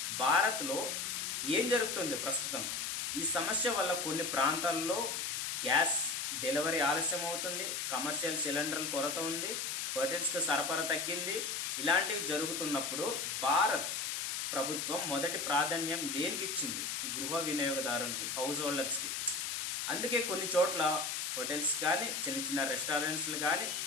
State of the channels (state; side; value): noise; left; hiss, 2 dB below the sound